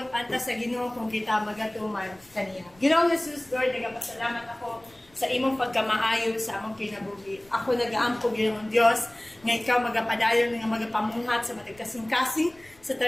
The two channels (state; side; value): noise; left; rumble, 28 dB below the sound